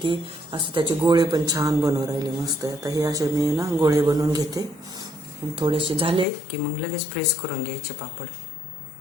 असं त्याचे गोळे पण छान बनवून राहिले मस्त। आता हे असे मी ना गोळे बनवून घेते, थोडेसे झाले की मग लगेच प्रेस करून घ्यायचे पापड।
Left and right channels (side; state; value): right; drops out; at 6.2 s